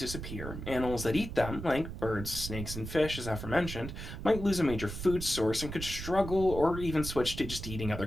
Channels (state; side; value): noise; right; rumble, 8 dB below the sound